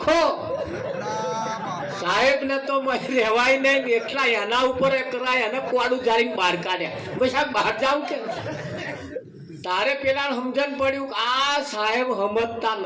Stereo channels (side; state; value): both; identical; correlation 1.00